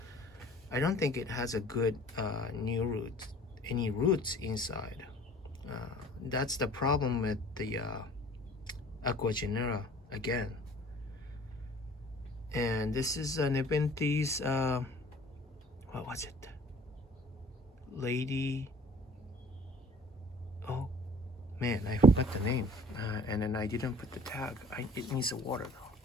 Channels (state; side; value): normal; both; correlation 0.49